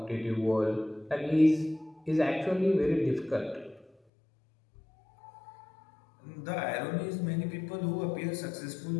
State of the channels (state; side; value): drops out; right; at 3.9 s